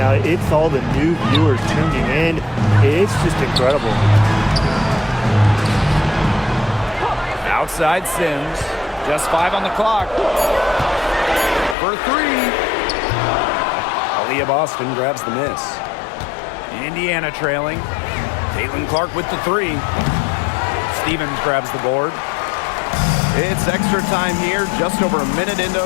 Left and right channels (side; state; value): right; drops out; at 11.8 s